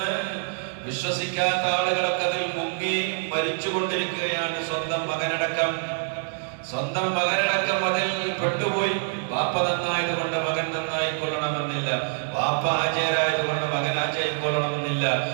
വിശ്വസിക്കാത്ത ആളുകളൊക്കെ അതിൽ മുങ്ങി മരിച്ചുകൊണ്ടിരിക്കുകയാണ്. സ്വന്തം മകനടക്കം അതിൽ പെട്ടുപോയി. വാപ്പ നന്നായതുകൊണ്ട് മകൻ നന്നായിക്കൊള്ളണമെന്നില്ല. വാപ്പ ആചാരായതുകൊണ്ട് മകൻ ആചാരിക്കൊള്ളണമെന്നില്ല.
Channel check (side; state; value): left; silent; digital silence